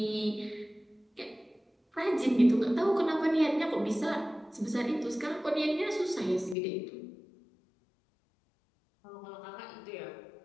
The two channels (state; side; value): drops out; right; at 6.6 s